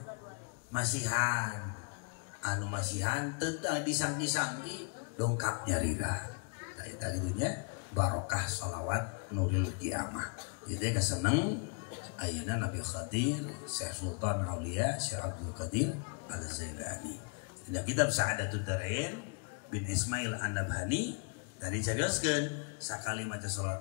masihan teu disangki-sangki dongkap nyarira. Eta kidunya barokah sholawat nuril qiyamah. Ieu teh kaseneng ayeuna Nabi Khadir, Syekh Sultan Aulia, Syekh Abdul Qadir Al-Zailani. Dina kitab Sa'adatud Darain bin Ismail An-Nabhani tadi carioskeun sakali maca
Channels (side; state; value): right; quieter; 37.4 dB